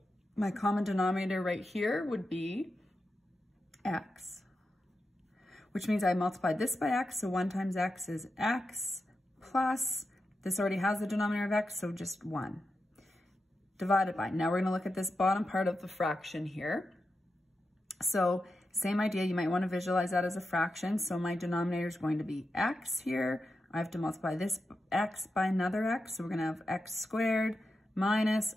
my common denominator right here would be x, which means I multiplied this by x. So 1 times x is x plus, this already has the denominator of x, so just 1. Divided by, now we're going to look at this bottom part of the fraction here. So same idea, you might want to visualize that as a fraction. So my denominator is going to be x here. I have to multiply this x by another x. So we're going to have x squared minus,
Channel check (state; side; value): normal; both; correlation 0.89